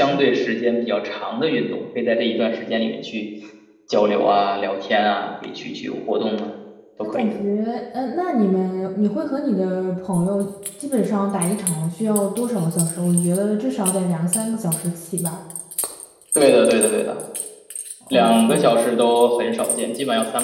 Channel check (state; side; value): identical; both; correlation 1.00